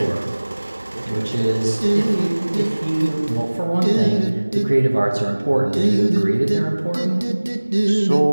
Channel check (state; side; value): inverted; both; correlation -1.00